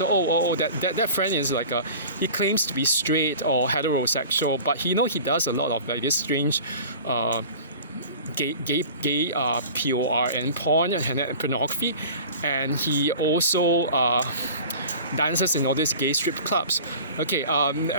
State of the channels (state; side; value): inverted; both; correlation -0.41